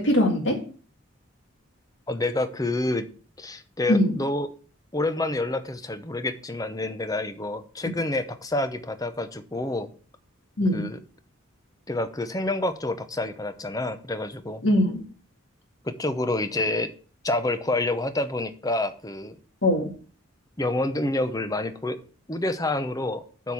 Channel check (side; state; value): both; normal; correlation 0.50